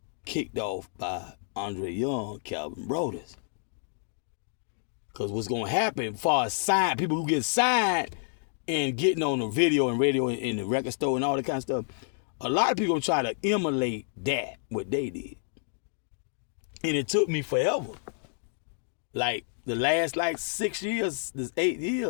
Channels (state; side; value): silent; right; digital silence